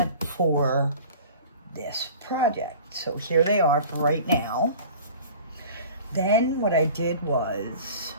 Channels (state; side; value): inverted; both; correlation -0.43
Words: for this project. So here they are for right now. Then what I did was,